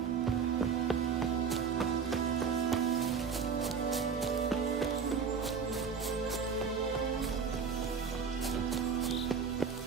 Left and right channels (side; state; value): left; quieter; 6.1 dB